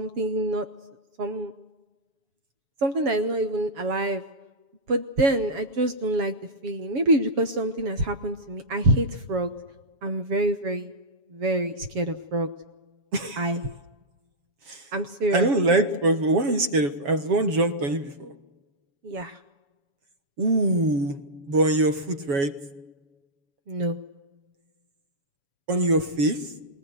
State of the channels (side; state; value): left; late; 7.1 ms